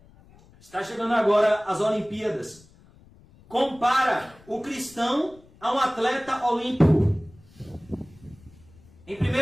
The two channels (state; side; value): noise; left; rumble, 26 dB below the sound